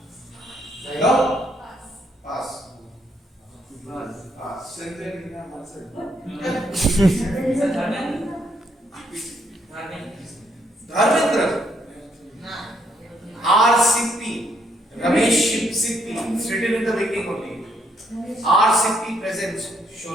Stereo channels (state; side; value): normal; both; correlation 0.73